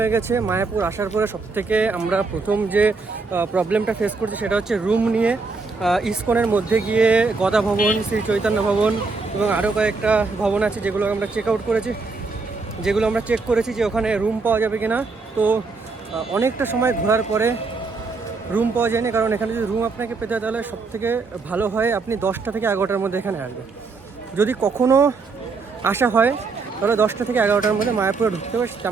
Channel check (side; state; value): left; quieter; 4.2 dB